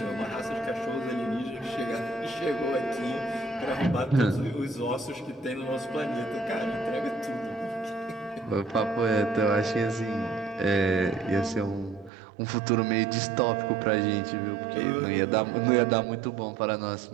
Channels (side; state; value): left; drops out; at 12.1 s